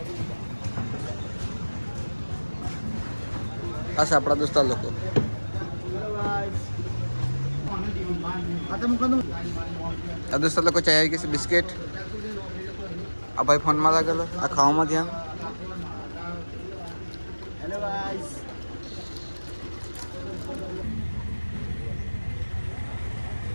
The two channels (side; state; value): both; inverted; correlation -1.00